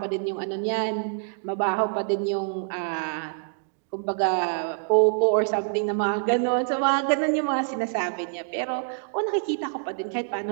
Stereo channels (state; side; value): silent; left; digital silence